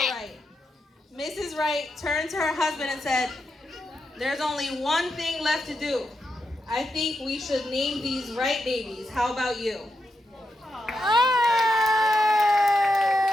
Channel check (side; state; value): both; normal; correlation 0.85